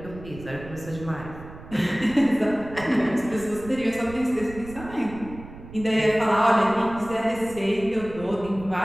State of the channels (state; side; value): noise; right; rumble, 15 dB below the sound